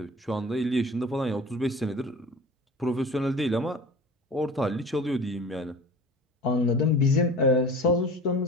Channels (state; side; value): normal; both; correlation 0.39